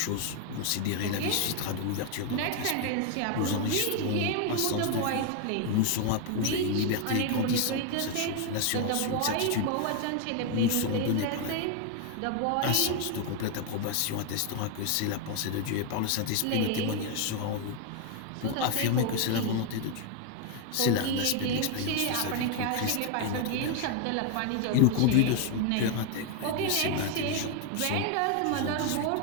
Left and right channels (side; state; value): both; different; correlation 0.01